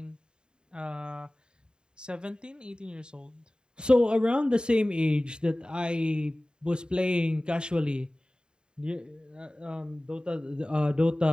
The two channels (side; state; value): left; late; 0.049 ms